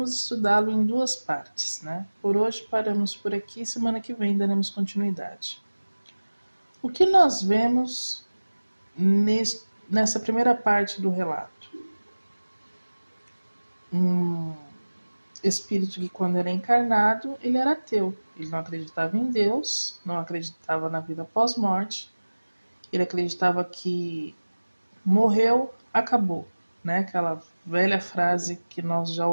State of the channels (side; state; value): both; inverted; correlation -1.00